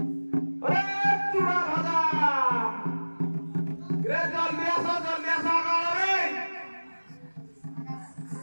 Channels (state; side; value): inverted; both; correlation -1.00